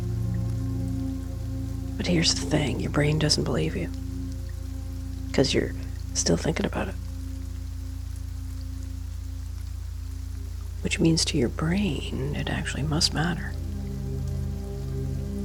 But here's the thing, your brain doesn't believe you. Because you're still thinking about it. Which means to your brain, it actually must matter.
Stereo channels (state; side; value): identical; both; correlation 1.00